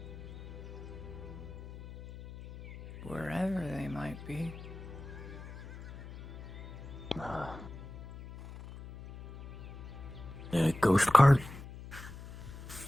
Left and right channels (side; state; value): left; noise; hum, 13 dB below the sound